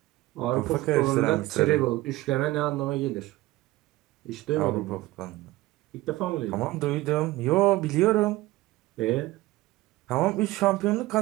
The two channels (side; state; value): left; quieter; 18.4 dB